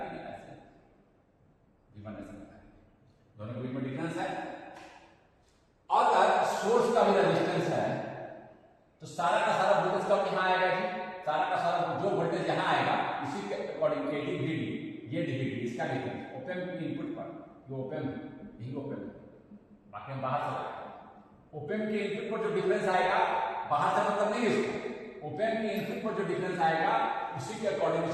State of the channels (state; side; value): identical; both; correlation 1.00